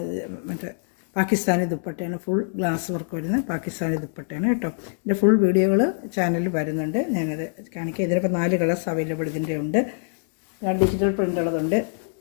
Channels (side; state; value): right; silent; digital silence